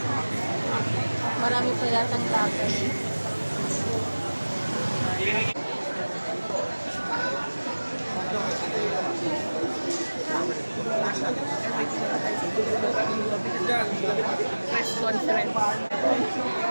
Marami pa yatang laban. Press conference.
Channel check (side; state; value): both; inverted; correlation -1.00